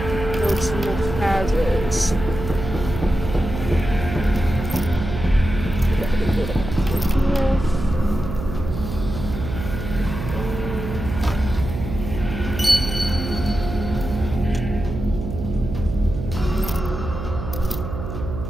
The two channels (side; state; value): right; noise; hum, 6 dB below the sound